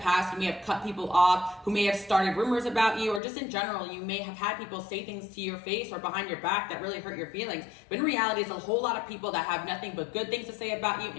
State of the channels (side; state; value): right; drops out; at 3.2 s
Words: you may have cut people off who may have started rumors about you, or just in general, you may have had people say things to your face or behind your back that really hurt your feelings. But in reality, it's a whole lot of people that have nothing but good things to say about you